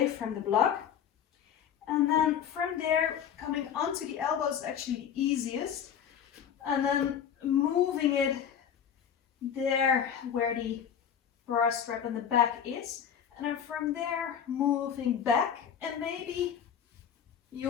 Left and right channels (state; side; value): quieter; right; 8.5 dB